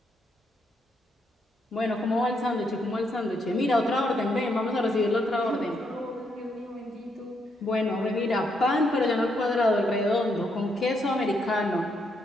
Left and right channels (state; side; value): normal; both; correlation 0.77